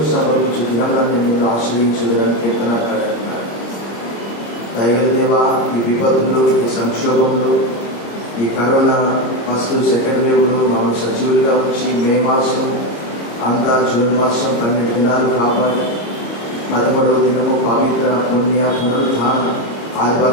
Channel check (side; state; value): right; late; 26 ms